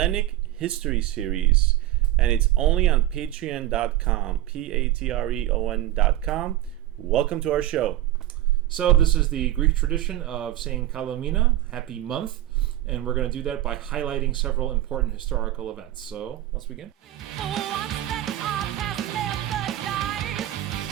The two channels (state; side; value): quieter; left; 14.4 dB